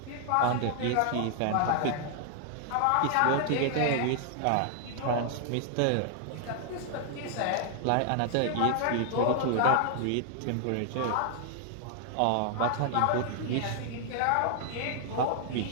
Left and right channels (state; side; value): different; both; correlation 0.00